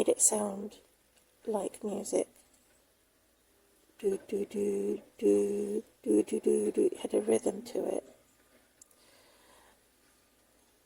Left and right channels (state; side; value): identical; both; correlation 1.00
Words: it sound like music. Do do do do do do do do. It had a rhythm to it.